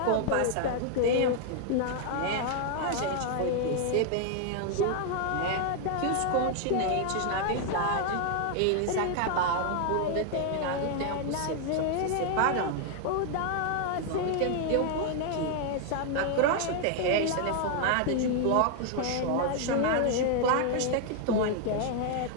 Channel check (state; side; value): different; both; correlation 0.00